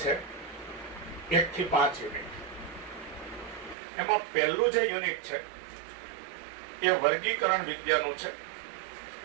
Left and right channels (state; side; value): drops out; left; at 3.8 s